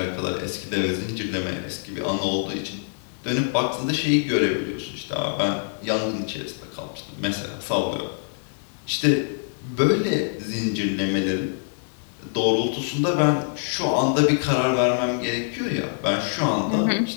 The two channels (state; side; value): silent; right; 62 dB below the other